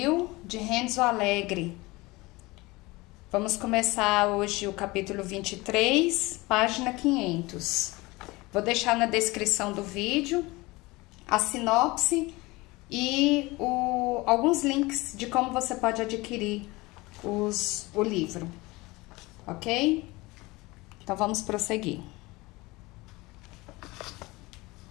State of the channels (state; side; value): quieter; right; 22.2 dB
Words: de Renzo Alegre. Vamos começar hoje o capítulo 23, página 500. Vou deixar na descrição do vídeo a sinopse e alguns links de como você pode adquirir o livro, ok? Então vamos prosseguir.